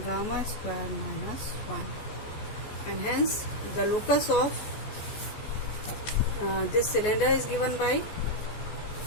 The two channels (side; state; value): right; late; 14 ms